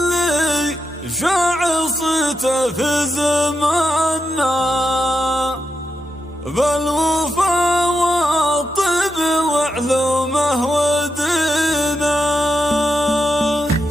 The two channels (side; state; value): both; normal; correlation 0.85